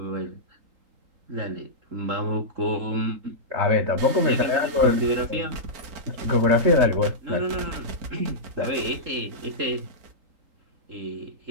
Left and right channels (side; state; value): left; late; 3.8 ms